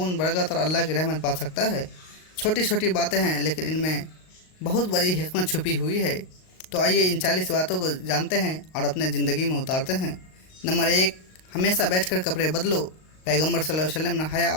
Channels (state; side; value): late; right; 38 ms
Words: बरकत और अल्लाह की रहमत पा सकता है। छोटी छोटी बातें हैं लेकिन इनमें बहुत बड़ी हिकमत छुपी हुई है। तो आइए इन 40 बातों को जानते हैं और अपने ज़िंदगी में उतारते हैं। नंबर 1, हमेशा बैठकर कपड़े बदलो। पैगंबर सल्लल्लाहु अलैहि वसल्लम ने हया